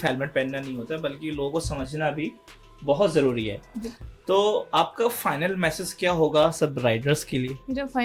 हेलमेट पहनना नहीं होता बल्कि लोगों को समझना भी बहुत ज़रूरी है। तो आपका फाइनल मैसेज क्या होगा सब राइडर्स के लिए? मेरा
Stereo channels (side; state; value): both; identical; correlation 1.00